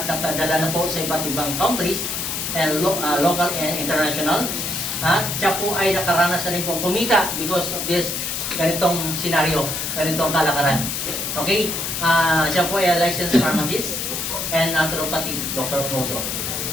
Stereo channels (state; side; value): noise; left; hiss, 3 dB below the sound